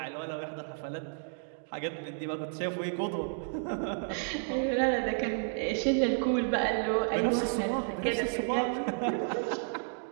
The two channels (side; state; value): left; silent; digital silence